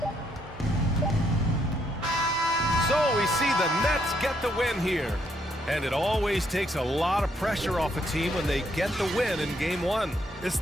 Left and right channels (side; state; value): both; normal; correlation 0.73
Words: So we see the Nets get the win here. And it always takes a lot of pressure off a team when they get the win in Game 1. It's